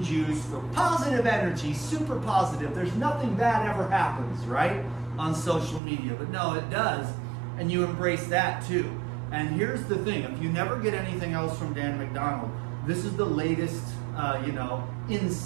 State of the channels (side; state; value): left; drops out; at 5.8 s